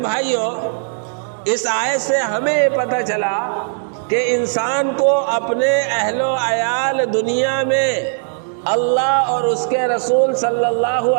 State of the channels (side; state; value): left; silent; digital silence